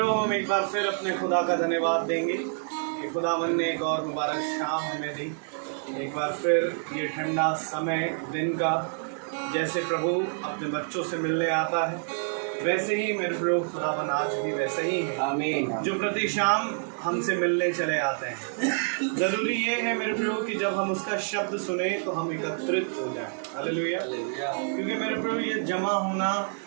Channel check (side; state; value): left; silent; 60 dB below the other